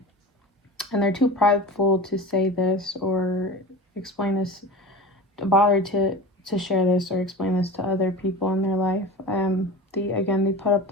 they're too prideful to say this or explain this, to bother to share this or explain this to other people in their life. They put up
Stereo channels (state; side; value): normal; both; correlation 0.32